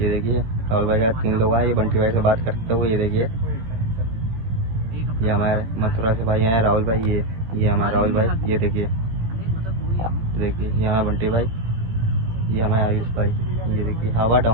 देखिए राहुल भाई का 3 लोग आए, ये बंटी भाई से बात करते हुए, ये देखिए ये हमारे मथुरा से भाई आए राहुल भाई, ये हमारे राहुल भाई, ये देखिए ये हमारे बंटी भाई, ये हमारे आयुष भाई, ये देखिए हवा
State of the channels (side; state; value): left; late; 18 ms